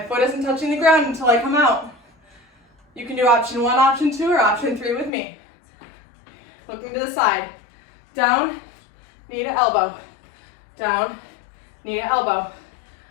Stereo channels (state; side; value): drops out; right; at 5.1 s